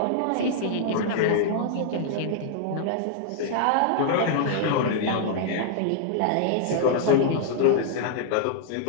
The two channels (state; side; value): different; both; correlation -0.01